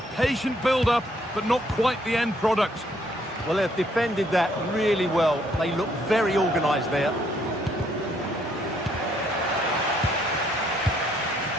patient build-up, but not quite the end product. Well, they've defended that really well. They look very organised there.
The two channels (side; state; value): both; normal; correlation 0.69